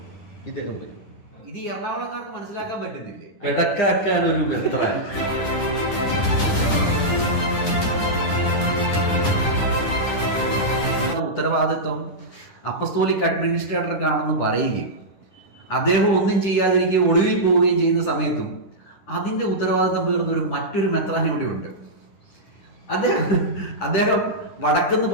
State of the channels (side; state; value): right; late; 9.9 ms